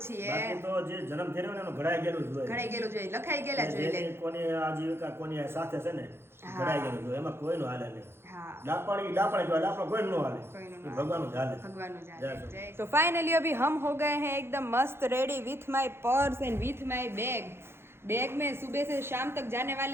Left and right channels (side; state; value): left; late; 0.12 ms